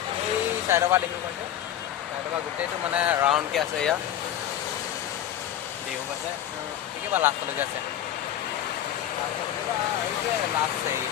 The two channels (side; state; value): right; quieter; 11.3 dB